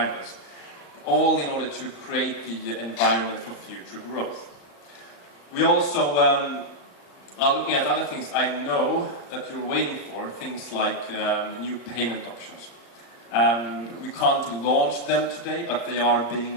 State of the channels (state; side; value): late; right; 35 ms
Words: All in order to create the environment for future growth. We also are looking at other things. I know that you're waiting for, things like new payment options. We can't launch them today, but they are